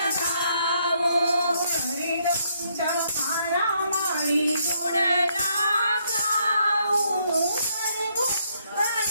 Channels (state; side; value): inverted; both; correlation -0.73